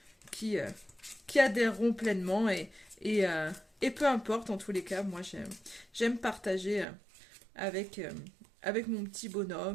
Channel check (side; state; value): left; drops out; at 6.9 s